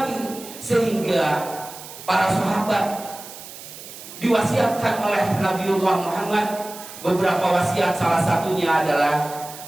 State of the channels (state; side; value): noise; right; hiss, 14 dB below the sound